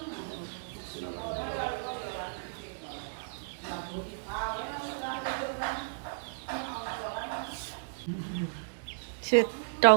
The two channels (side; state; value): left; silent; digital silence